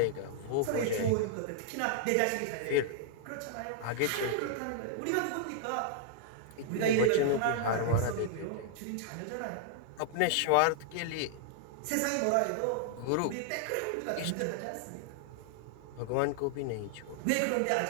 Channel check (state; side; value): different; both; correlation -0.01